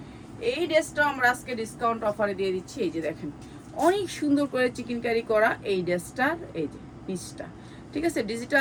এই ড্রেসটা আমরা আজকে ডিসকাউন্ট অফারে দিয়ে দিচ্ছি। এই যে দেখেন অনেক সুন্দর করে চিকেন কারি করা এই ড্রেসটার, এই যে পিসটা, ঠিক আছে,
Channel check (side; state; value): both; identical; correlation 1.00